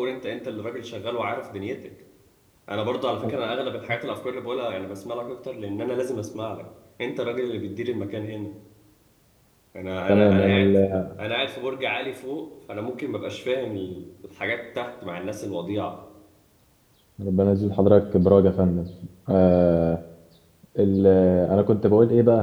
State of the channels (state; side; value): identical; both; correlation 1.00